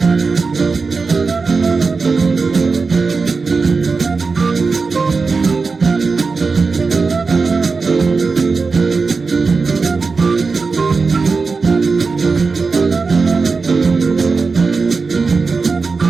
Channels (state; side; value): quieter; left; 4.5 dB